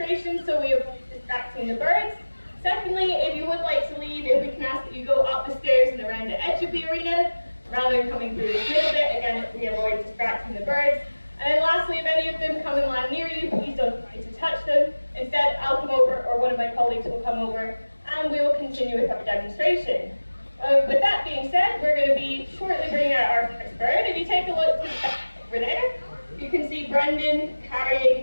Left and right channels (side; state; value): both; inverted; correlation -1.00